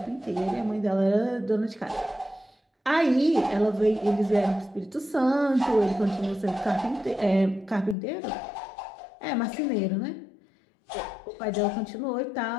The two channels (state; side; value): drops out; right; at 8.0 s